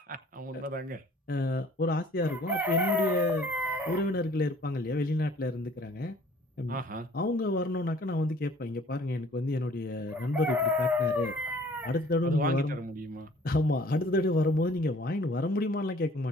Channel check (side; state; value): both; normal; correlation 0.54